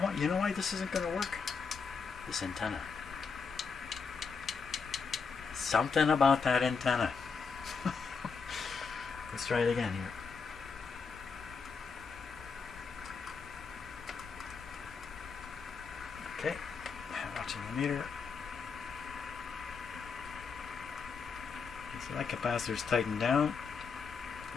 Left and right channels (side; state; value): right; quieter; 5.4 dB